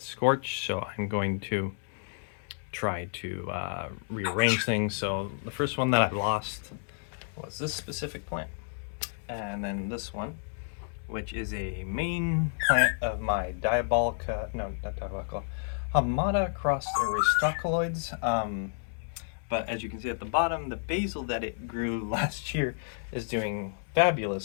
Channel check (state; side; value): silent; right; 57 dB below the other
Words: scorched, so I'm going to try to rearrange things. So the first one that I lost was this specific plant, and then this one, which is a main plant of my Hamada crossed aristocoloids. But as you can see at the bottom, the basil that it grew last year is doing